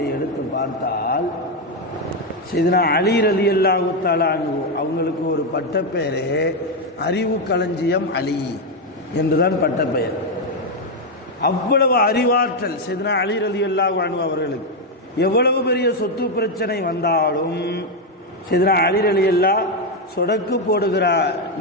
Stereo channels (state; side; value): normal; both; correlation 0.05